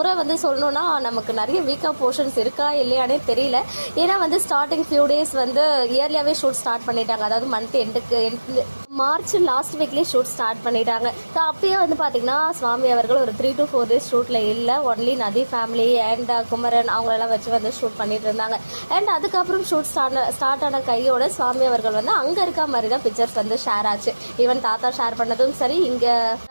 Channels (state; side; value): inverted; both; correlation -1.00